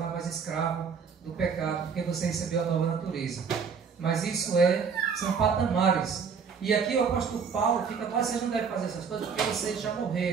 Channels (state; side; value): quieter; left; 6.1 dB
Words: mais escravo do pecado, porque você recebeu a nova natureza. Mas isso são patamares. E aqui o apóstolo Paulo fica, vocês não devem fazer essas coisas porque vocês já